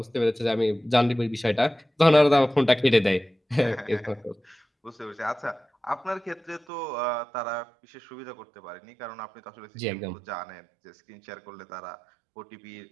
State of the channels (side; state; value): left; drops out; at 6.7 s